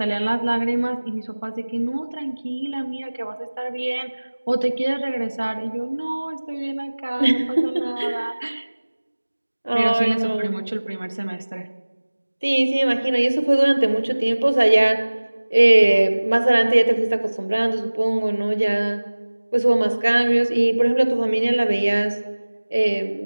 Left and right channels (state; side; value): inverted; both; correlation -1.00